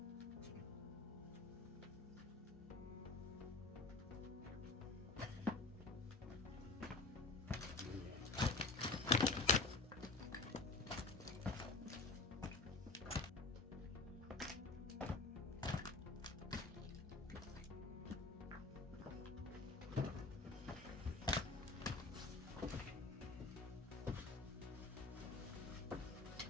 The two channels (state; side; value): quieter; right; 3.7 dB